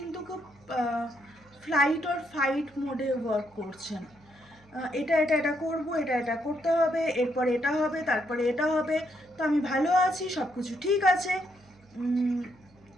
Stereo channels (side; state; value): right; noise; hum, 29 dB below the sound